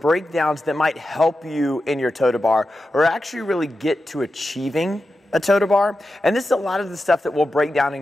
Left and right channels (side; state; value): both; normal; correlation 0.91